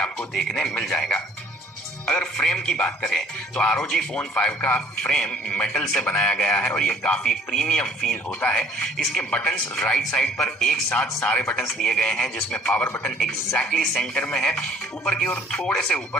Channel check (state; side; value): normal; both; correlation 0.56